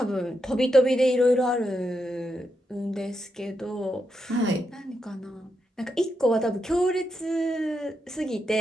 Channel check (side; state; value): both; normal; correlation 0.84